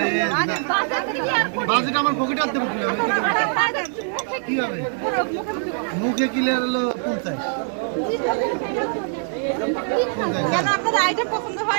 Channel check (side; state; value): left; silent; 61 dB below the other